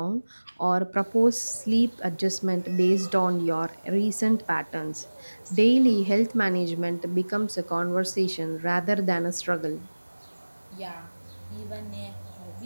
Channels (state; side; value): inverted; both; correlation -1.00